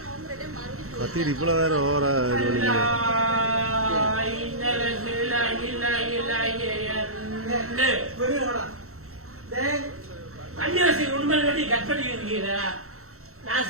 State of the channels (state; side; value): late; left; 0.64 ms